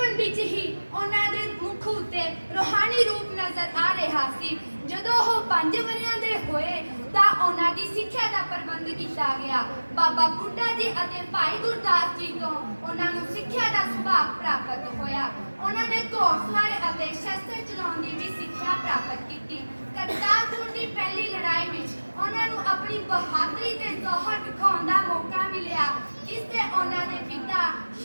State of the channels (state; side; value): inverted; both; correlation -1.00